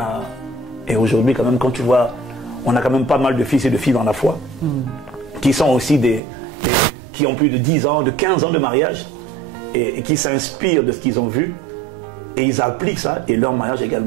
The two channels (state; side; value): drops out; left; at 6.2 s